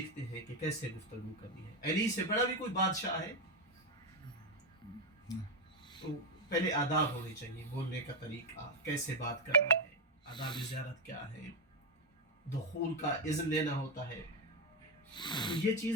ہیں کہ کیسے گفتگو کرنی ہے. علی سے بڑا بھی کوئی بادشاہ ہے تو پہلے آداب ہونے چاہیے, بولنے کا طریقہ, کیسے بات کرنا ہے, آداب زیارت کیا ہے, دخول کا اذن لینا ہوتا ہے. تو یہ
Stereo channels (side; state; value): both; normal; correlation 0.06